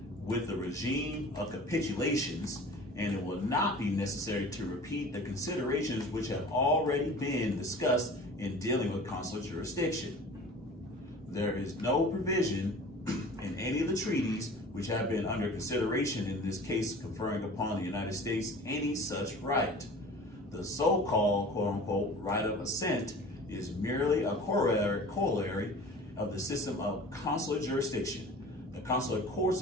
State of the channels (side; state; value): both; normal; correlation 0.42